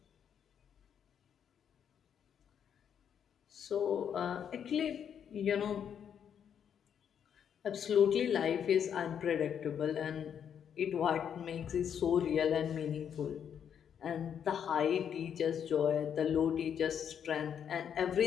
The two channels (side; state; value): right; quieter; 8.3 dB